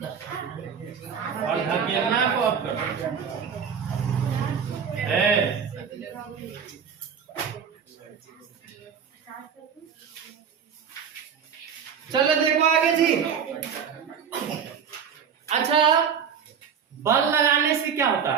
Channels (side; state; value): left; quieter; 7.3 dB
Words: और धकेलना को अपकर्षण। चलो देखो आगे जी। अच्छा, बल लगाने से क्या होता